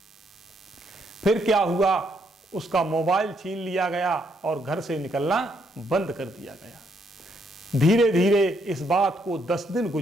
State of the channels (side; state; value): both; normal; correlation 0.73